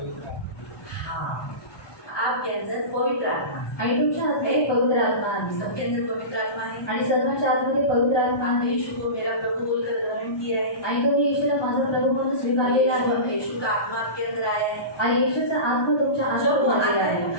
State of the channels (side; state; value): right; late; 1.2 ms